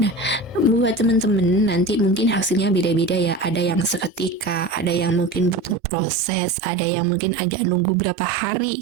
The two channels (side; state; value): left; drops out; at 5.8 s